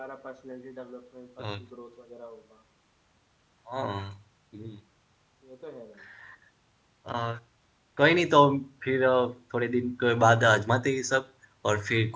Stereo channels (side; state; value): both; identical; correlation 1.00